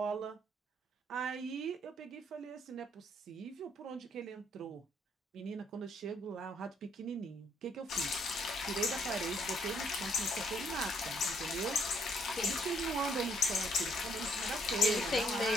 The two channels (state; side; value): normal; both; correlation 0.68